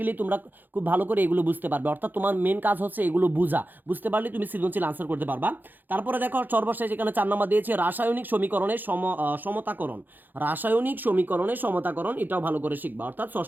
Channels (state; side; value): late; left; 0.088 ms